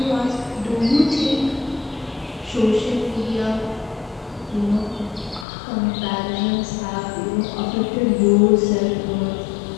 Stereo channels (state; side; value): drops out; right; at 5.5 s